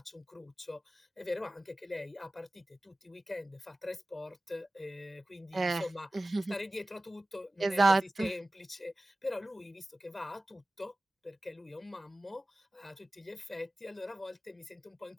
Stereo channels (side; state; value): both; normal; correlation 0.96